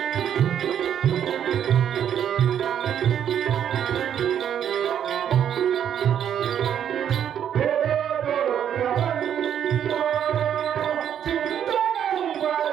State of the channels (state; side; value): quieter; left; 9.3 dB